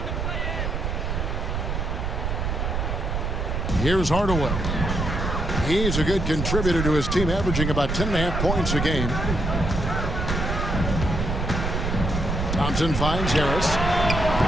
Here's Hardaway. He's a good contributor to his team, averaging about 10.5 points a game. Thompson finds Harris.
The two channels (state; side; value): noise; right; rumble, 1 dB below the sound